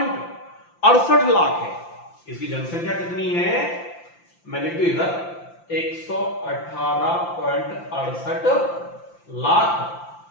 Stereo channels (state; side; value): late; right; 5.8 ms